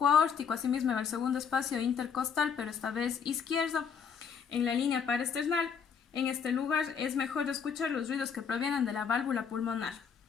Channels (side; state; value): right; quieter; 6.8 dB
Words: aórtico, asimismo en el segundo espacio intercostal, pero esta vez izquierdo, en la línea paraesternal. En este lugar es mejor escuchar los ruidos que provienen de la válvula pulmonar.